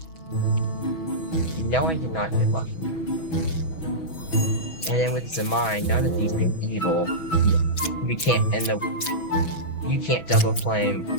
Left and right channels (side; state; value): right; late; 6.2 ms